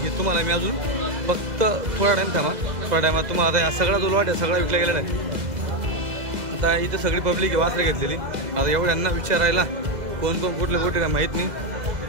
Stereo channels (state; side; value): late; left; 2.0 ms